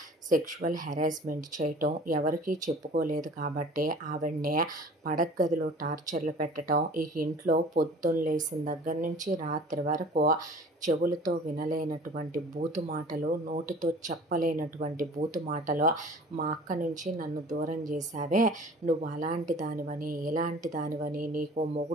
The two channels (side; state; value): both; normal; correlation 0.45